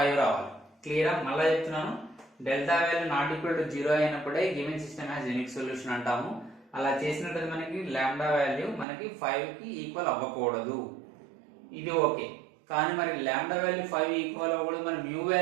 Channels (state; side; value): drops out; left; at 8.8 s